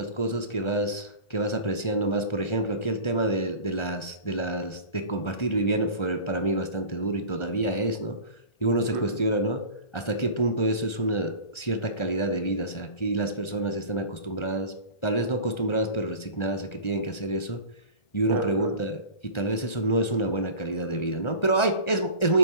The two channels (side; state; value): right; late; 1.3 ms